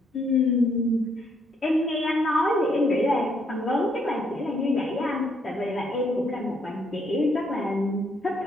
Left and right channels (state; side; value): normal; both; correlation 0.72